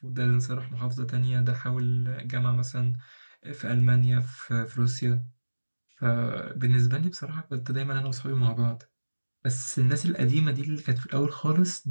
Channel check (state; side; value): inverted; both; correlation -1.00